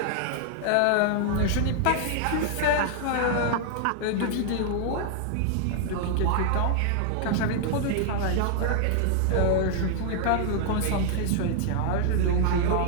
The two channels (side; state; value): both; different; correlation 0.00